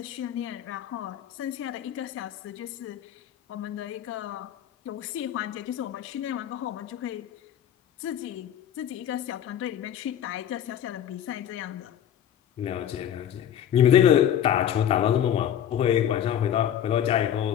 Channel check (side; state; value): right; quieter; 10.1 dB